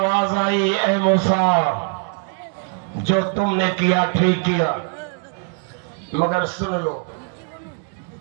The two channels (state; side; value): quieter; left; 39.6 dB